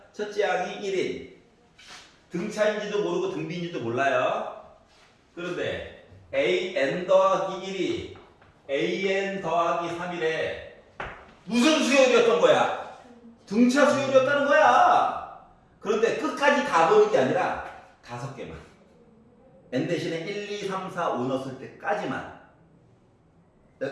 첫째 항이 1인. 등차인지도 모르고 등비인지도 몰라요. 그런데 an 더하기 1이 an 더하기 3이래. 무슨 수열이었던 거야? 등차 수열이었다는 거야. 그런데 끝까지 다 보는 게 아니라 5개만. n 대신에 1, 2, 3, 4, 5 넣었을 때까지만.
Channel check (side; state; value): both; identical; correlation 1.00